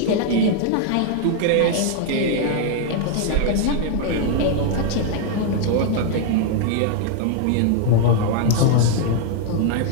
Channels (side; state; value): both; different; correlation 0.00